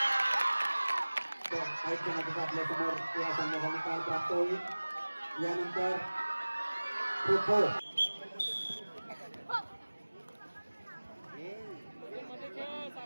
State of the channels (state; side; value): inverted; both; correlation -1.00